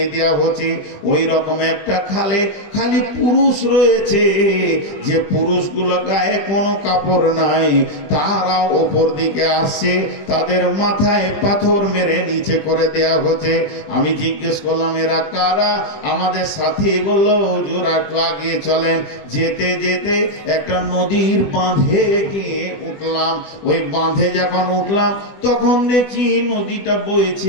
দেওয়া হচ্ছে। ওই রকম একটা খালে খালি পুরুষ রয়েছে, যে পুরুষগুলো গায়ে কোনো কাপড় নাই, তারা ওপর দিকে আসছে, তাদের মাথায় পাথর মেরে নিচে করে দেয়া হচ্ছে। আমি জিজ্ঞেস করলাম এরা কারা? আমাদের সাথী বলল, হুজুর একটু আগিয়ে চলেন। যেতে যেতে একটা নদীর বাঁধে গিয়ে উঠলাম। ওই বাঁধে যখন উঠলাম তখন দেখি নদীটা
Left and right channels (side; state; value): right; late; 20 ms